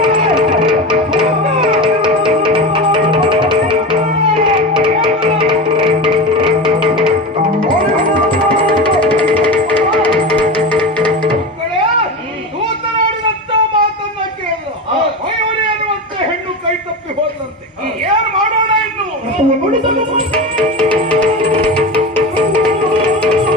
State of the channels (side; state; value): both; normal; correlation 0.24